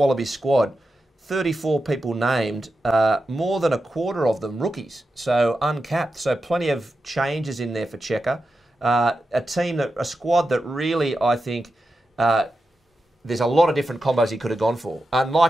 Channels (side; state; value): both; normal; correlation 0.90